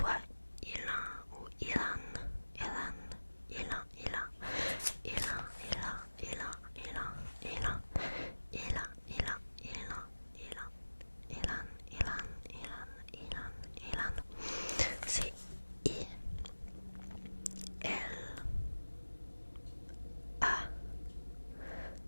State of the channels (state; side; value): inverted; both; correlation -1.00